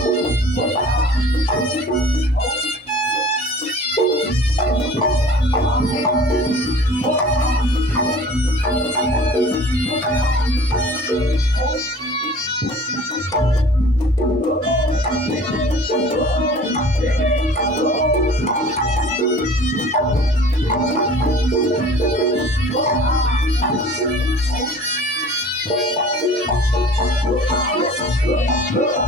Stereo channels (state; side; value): normal; both; correlation 0.45